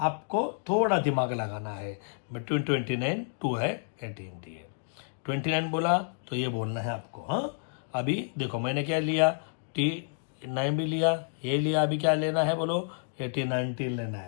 थोड़ा दिमाग लगाना है। बिटवीन 29 2 है 18 डी है, 29 बोला तो ये बोलना है आपको। हाँ, अभी देखो मैंने क्या लिया, T9 भी लिया, ये लिया, अभी क्या लेना है बोलो, 18 लेना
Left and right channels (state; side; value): silent; right; digital silence